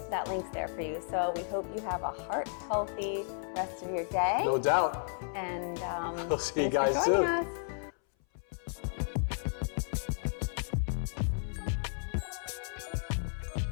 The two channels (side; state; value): right; silent; 56 dB below the other